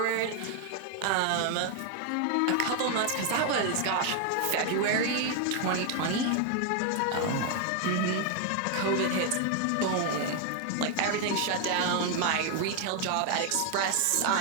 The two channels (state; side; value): different; both; correlation 0.00